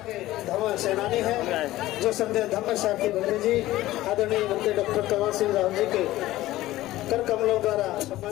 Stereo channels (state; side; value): quieter; right; 16.1 dB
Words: धम्म सेनानी है, जो संत धम्म साहब की बंधु जी आदरणीय मंत्री डॉक्टर कमल सिंह राव जी के कर कमलों द्वारा